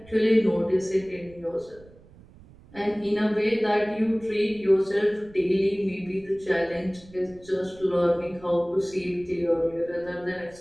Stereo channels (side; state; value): right; noise; rumble, 23 dB below the sound